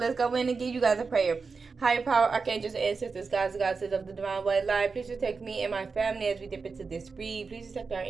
let's go in and give you guys a prayer. Higher power, archangels, ancestors, gods, goddesses of the divine white light, please protect me and my family as we dip into this read. Please protect our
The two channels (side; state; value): left; quieter; 4.7 dB